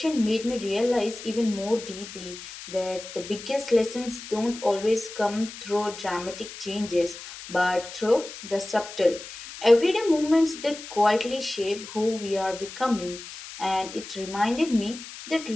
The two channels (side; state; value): left; noise; hiss, 13 dB below the sound